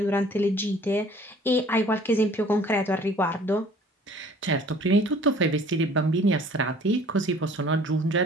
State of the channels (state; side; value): normal; both; correlation 0.52